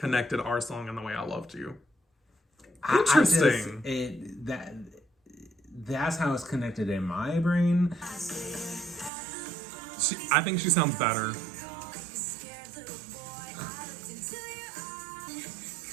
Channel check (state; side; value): drops out; left; at 9.1 s